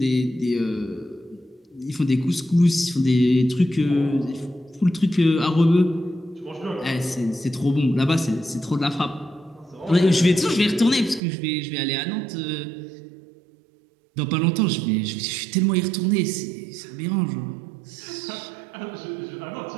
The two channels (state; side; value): drops out; left; at 11.2 s